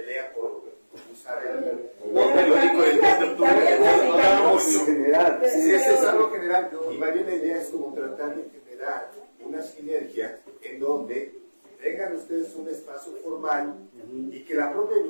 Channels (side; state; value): both; inverted; correlation -1.00